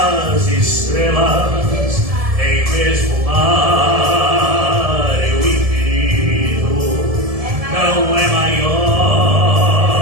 estrelas, nem mesmo o mar e o infinito não é maior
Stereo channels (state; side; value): late; left; 1.7 ms